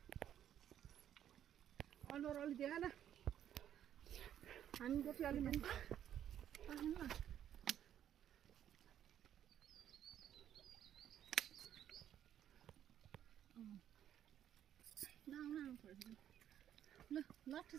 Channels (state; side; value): quieter; left; 10.4 dB